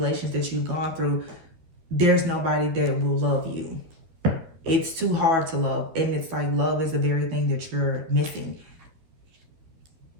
that you've gone through, there's nobody that will love you. It's too hard to love. And it's like love is the very thing that you're missing.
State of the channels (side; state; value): left; late; 12 ms